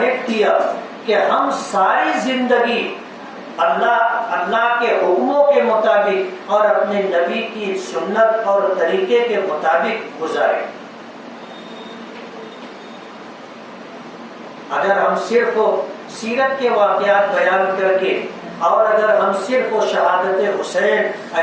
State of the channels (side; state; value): both; identical; correlation 1.00